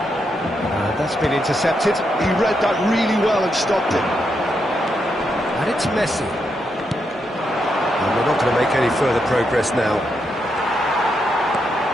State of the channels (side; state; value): both; normal; correlation 0.81